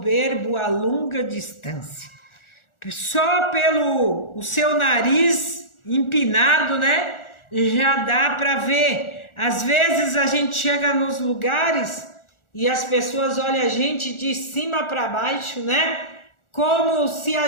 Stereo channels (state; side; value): late; right; 1.4 ms